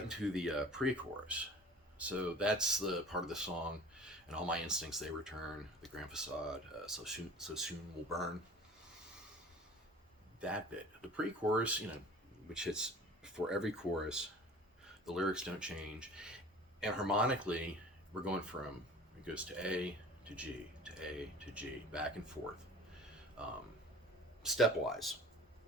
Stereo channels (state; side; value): normal; both; correlation 0.43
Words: into the pre-chorus. So that's the part of the song, and all my instincts, they return, the grand facade, so soon will burn. That bit. The pre-chorus, which hits before every chorus, the lyrics don't change, and harmonically, we're going from, it goes to A to G, to A to G, back and forth, stepwise.